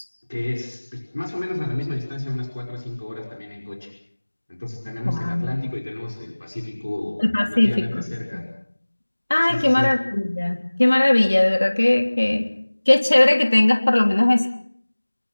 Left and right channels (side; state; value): both; inverted; correlation -1.00